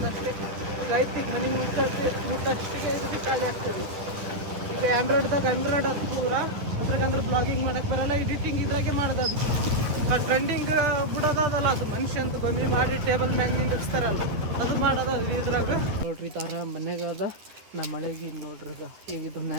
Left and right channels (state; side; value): late; left; 10 ms